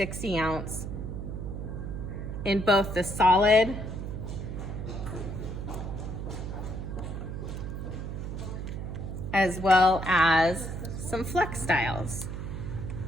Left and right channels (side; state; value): right; noise; hum, 6 dB below the sound